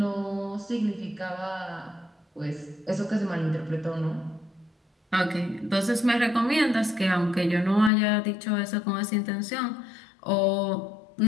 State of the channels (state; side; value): drops out; right; at 7.9 s